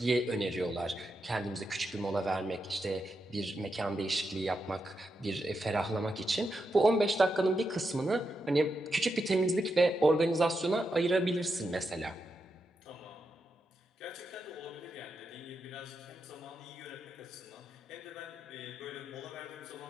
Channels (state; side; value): normal; both; correlation 0.85